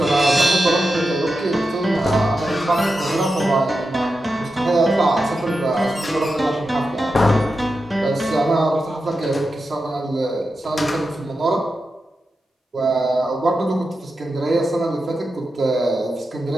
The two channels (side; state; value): both; normal; correlation 0.90